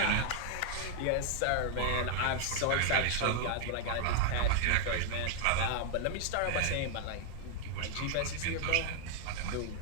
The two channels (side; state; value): both; different; correlation 0.00